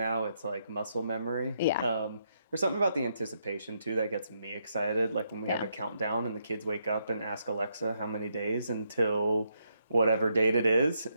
It's like muscle memory. Yeah. There's something about the anticipation too that gets me excited. Like when we have Yeah. a countdown and the kids wake up and ask Alexa how many days until whatever date it is,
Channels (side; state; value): both; inverted; correlation -0.78